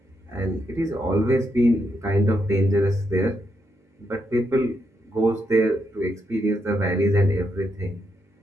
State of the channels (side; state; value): both; normal; correlation 0.80